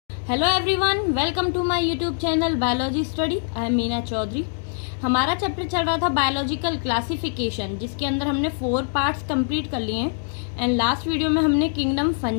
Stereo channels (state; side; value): silent; right; digital silence